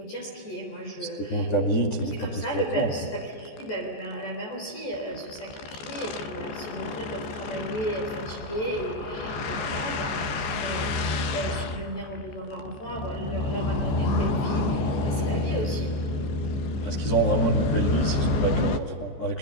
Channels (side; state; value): right; late; 14 ms